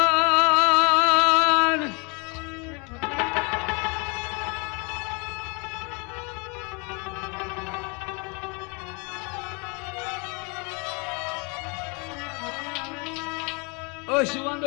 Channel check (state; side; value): quieter; right; 31.6 dB